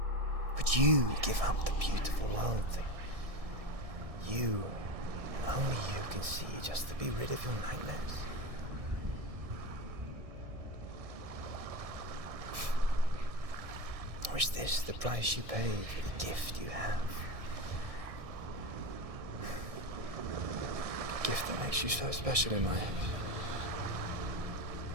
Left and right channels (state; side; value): late; left; 1.6 ms